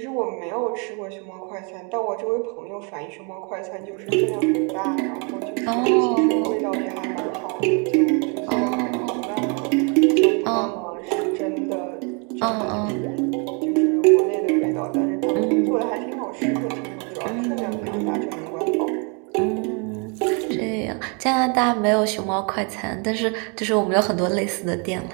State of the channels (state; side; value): quieter; left; 35.2 dB